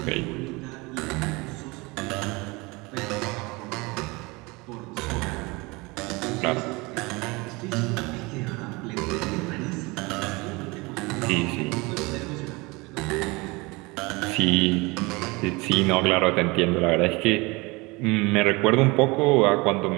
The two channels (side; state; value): left; quieter; 24.9 dB